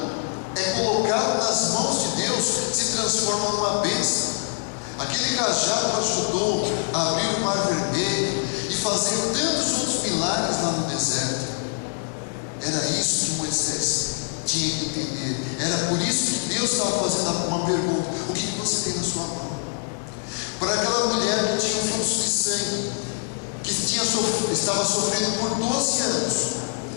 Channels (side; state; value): right; silent; 56 dB below the other